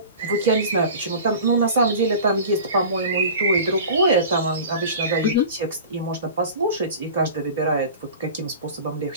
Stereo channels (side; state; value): both; inverted; correlation -0.37